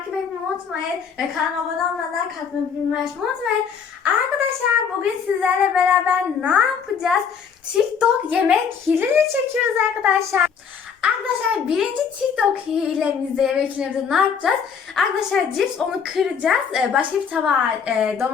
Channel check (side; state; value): right; quieter; 6.7 dB